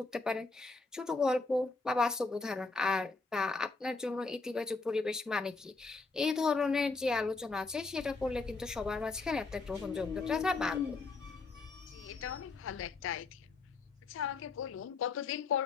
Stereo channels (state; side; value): quieter; right; 3.9 dB